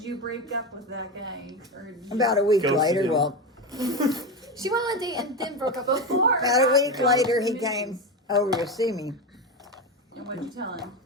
you break up with that guy? Or did you- About a week Ghosted later, him. well, She went on a date and then broke up with him. Before. about a week later, he came over to see me. And what'd you tell him?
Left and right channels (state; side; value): normal; both; correlation 0.17